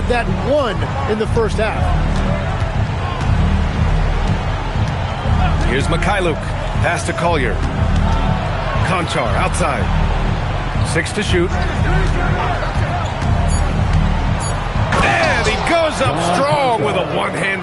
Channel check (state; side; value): identical; both; correlation 1.00